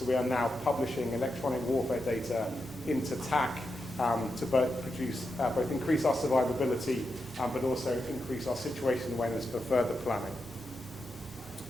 we are now publishing electronic warfare data into TAC to both increase our survivability, but also increase our situation awareness for further planning.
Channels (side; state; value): both; normal; correlation 0.87